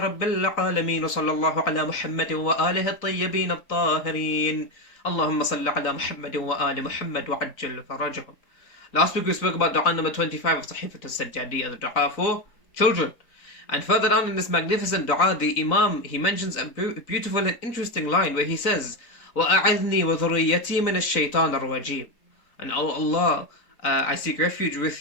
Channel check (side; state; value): right; late; 3.9 ms